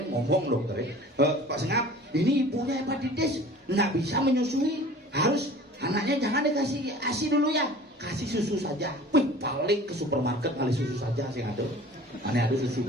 ngomong dokter Pak Sengap ini ibunya hepatitis nggak bisa menyusui harus anaknya jangan dikasih ASI dulu ya kasih susu saja wih paling ke supermarket ngali susu saja sing ada. Ane ada susu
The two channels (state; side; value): normal; both; correlation 0.44